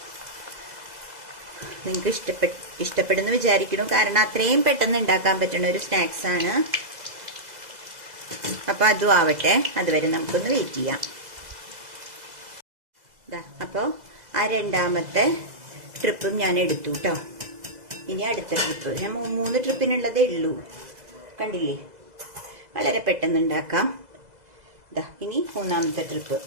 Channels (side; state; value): left; late; 2.0 ms